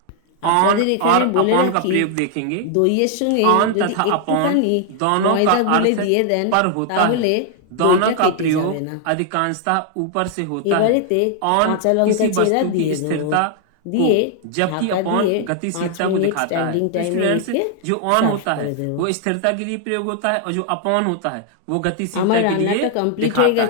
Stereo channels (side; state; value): both; different; correlation 0.00